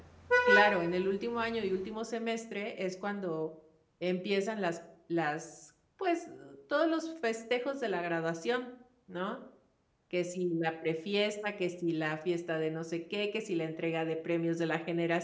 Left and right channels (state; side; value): identical; both; correlation 1.00